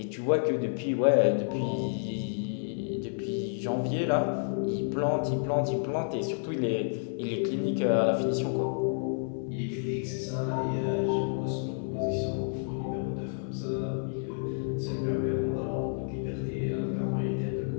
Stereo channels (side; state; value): right; silent; 58 dB below the other